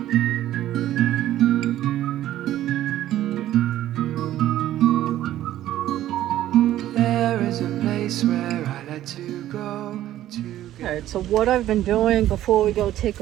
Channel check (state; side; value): quieter; left; 13.2 dB